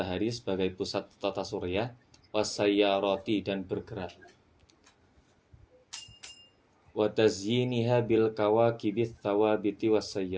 sebagai pusat tata surya, wasayyarati, dan bergerak. Wa tazyiniha bil kawakibits thawabiti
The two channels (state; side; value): identical; both; correlation 1.00